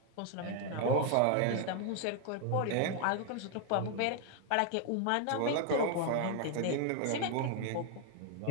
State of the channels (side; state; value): both; different; correlation 0.00